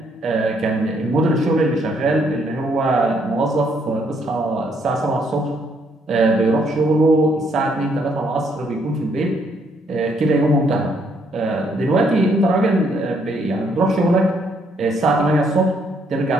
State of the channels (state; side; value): normal; both; correlation 0.70